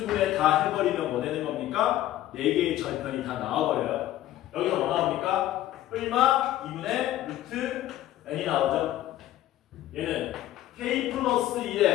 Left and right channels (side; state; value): right; quieter; 13.9 dB